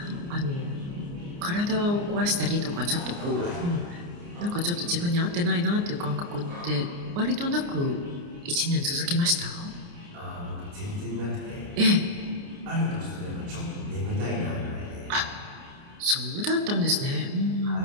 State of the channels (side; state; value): left; late; 29 ms